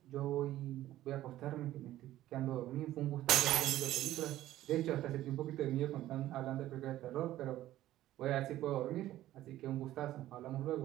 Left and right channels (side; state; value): left; quieter; 14.3 dB